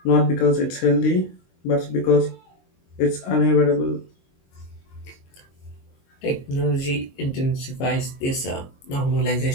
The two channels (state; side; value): late; right; 22 ms